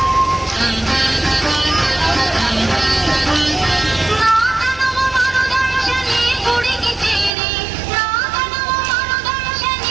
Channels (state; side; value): drops out; left; at 7.3 s